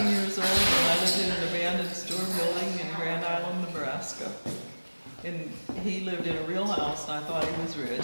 years old and I lived in an abandoned store building in Grand Island, Nebraska. And he lived in a real house and I thought he was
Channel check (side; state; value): both; inverted; correlation -1.00